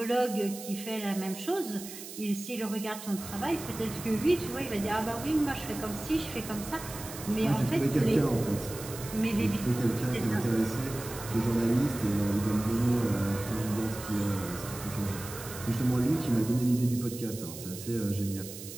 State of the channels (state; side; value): noise; right; hiss, 12 dB below the sound